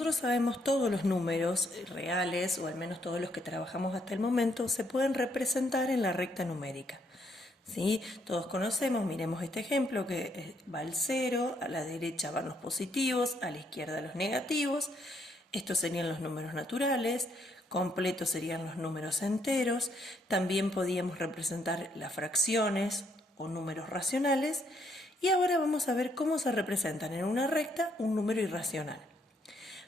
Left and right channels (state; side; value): normal; both; correlation 0.72